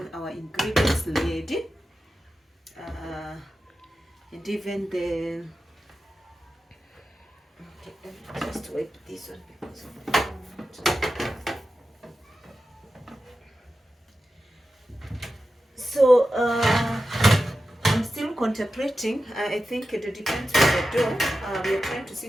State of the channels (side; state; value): both; normal; correlation 0.92